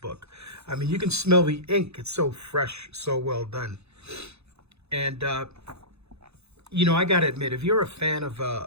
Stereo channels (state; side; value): late; left; 0.80 ms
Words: I mean, you can smell the ink. It's so fresh, so well done. And you know, I gotta admit, if you're a fan of